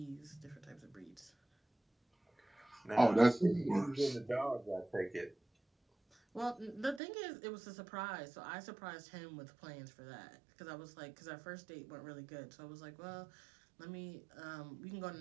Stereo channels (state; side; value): drops out; left; at 7.0 s